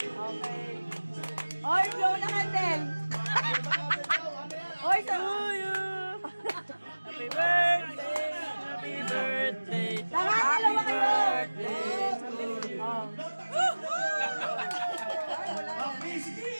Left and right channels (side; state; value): both; inverted; correlation -1.00